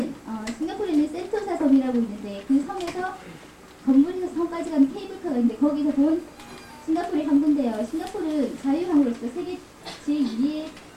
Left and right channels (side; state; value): both; identical; correlation 1.00